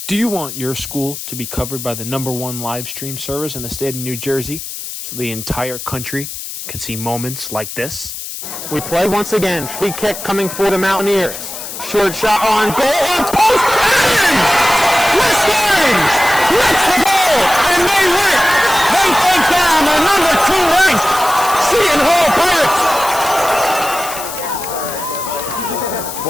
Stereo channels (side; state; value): left; noise; hiss, 9 dB below the sound